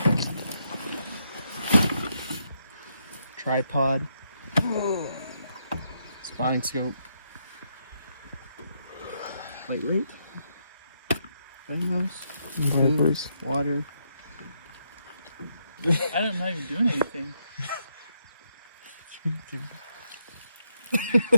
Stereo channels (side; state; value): both; inverted; correlation -0.78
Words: Tripod, spotting scope, lightweight, farmhouse, wipers, water. I don't know you're doing anything.